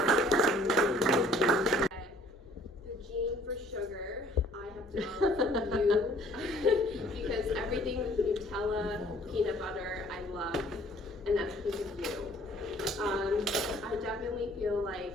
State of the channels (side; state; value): both; normal; correlation 0.57